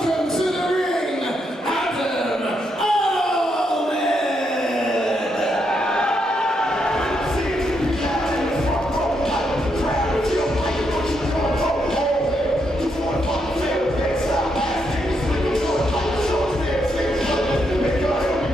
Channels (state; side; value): normal; both; correlation 0.79